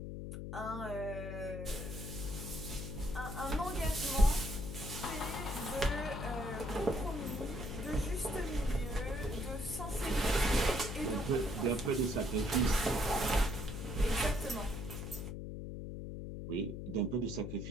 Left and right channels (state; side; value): noise; left; hum, 6 dB below the sound